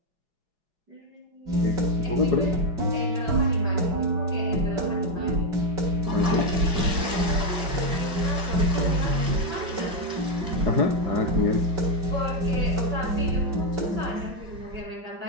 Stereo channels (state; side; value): late; left; 5.4 ms